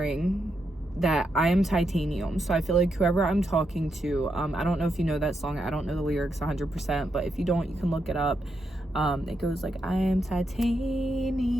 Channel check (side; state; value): both; normal; correlation 0.83